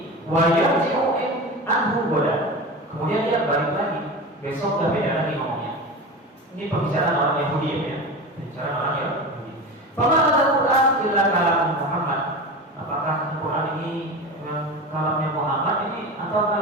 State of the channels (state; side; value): normal; both; correlation 0.28